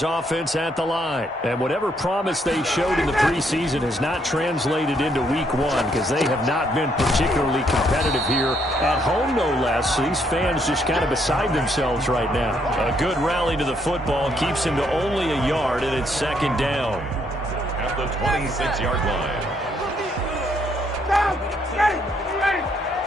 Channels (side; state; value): both; normal; correlation 0.72